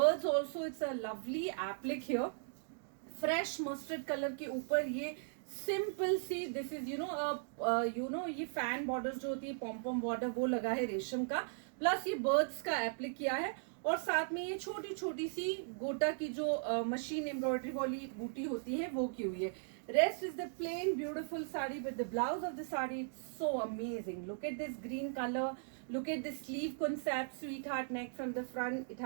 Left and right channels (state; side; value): silent; left; digital silence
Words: also, it's a lovely applique here. Fresh mustard colour के ऊपर ये simple सी, this is ये fan border जो होती है, पॉम border, वो लगा है रेशम का, प्लस ये बर्ड्स का एप्लिक किया है। और साथ में ये छोटी छोटी सी गोटा की जो मशीन एम्ब्रॉयडरी वाली बूटी होती है वो की हुई है। Rest is the plain beautiful sari, with the blouse of the sari, it's so amazing. Look at this green color. Look at the sleeve concept, sweetheart neck from the front. It